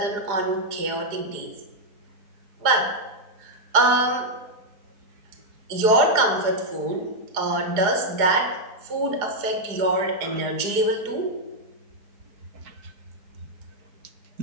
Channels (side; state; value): left; late; 4.8 ms